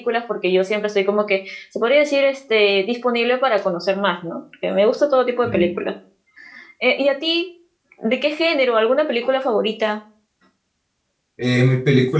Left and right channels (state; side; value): identical; both; correlation 1.00